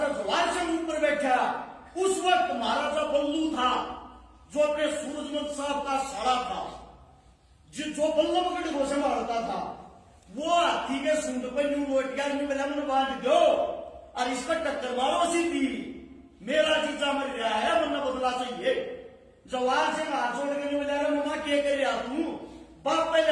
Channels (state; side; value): identical; both; correlation 1.00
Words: जवाहर सिंह ऊपर बैठा। उस वक्त महाराजा बल्लू था जो अपने सूरजमल साहब का साड़ा था, जो बल्लभगढ़ को संभालता था, वो हाथी के सूंड पर यूं लोट गया, मन बांध दो और इसका टक्कर मारो सीधी, मेरा जीजा मर गया है, वरना बदला चाहिए। जवाहर सिंह हाथ जोड़ के बोला मम्मा क्या कर रहा तू,